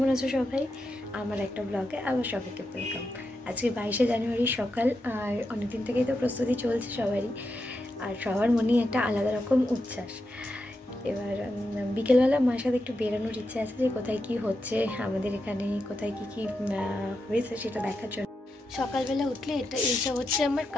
আছো সবাই? আমার একটা ব্লগে আবার সবাইকে ওয়েলকাম। আজকে 22শে জানুয়ারি সকাল, আর অনেকদিন থেকেই তো প্রস্তুতি চলছে সবারই, আর সবার মনেই একটা আলাদা রকম উচ্ছ্বাস। এবার বিকেলবেলা মার সাথে একটু বেরোনোর ইচ্ছে আছে, যে কোথায় কি হচ্ছে আমাদের এখানে, কোথায় কি কি হয়েছে সেটা দেখার জন্য। সকালবেলা উঠলে এইসব হচ্ছে আমার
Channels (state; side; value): normal; both; correlation 0.86